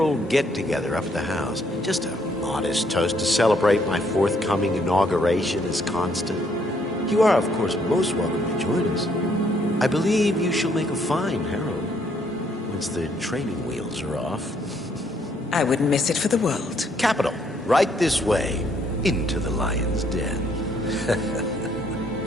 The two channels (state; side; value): normal; both; correlation 0.69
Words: get-together up at the house. Just a modest toast to celebrate my forthcoming inauguration as Constant. You are, of course, most welcome to join us. I believe you shall make a fine Herald, once the training wheels are off. I wouldn't miss it for the world. Capital. Right this way, into the lion's den.